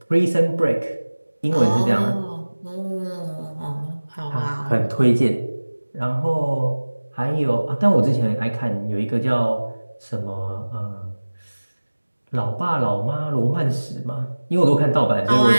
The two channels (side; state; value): both; inverted; correlation -1.00